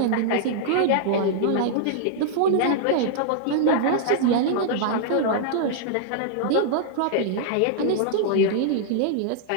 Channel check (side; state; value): both; different; correlation -0.01